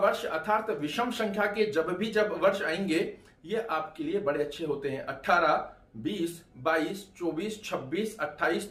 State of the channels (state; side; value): identical; both; correlation 1.00